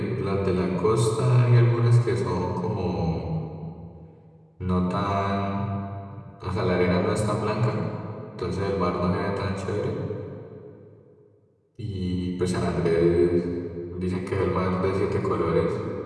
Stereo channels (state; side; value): identical; both; correlation 1.00